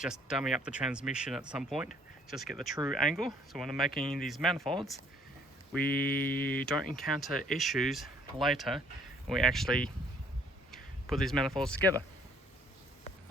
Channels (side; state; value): both; normal; correlation 0.61